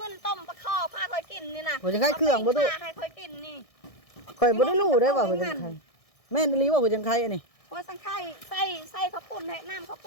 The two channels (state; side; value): late; right; 1.6 ms